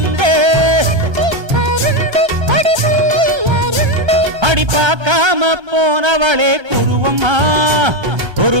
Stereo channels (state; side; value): late; left; 1.3 ms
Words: அடி பார்க்காம போனவளே குருவம்மா, ஒரு